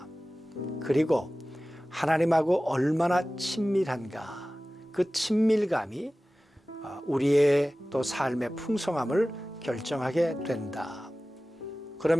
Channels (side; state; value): both; normal; correlation 0.97